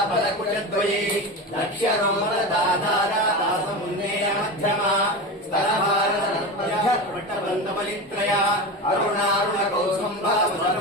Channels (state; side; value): normal; both; correlation 0.24